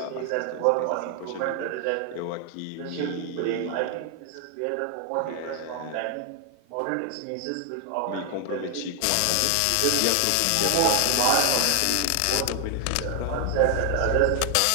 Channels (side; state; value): both; different; correlation 0.00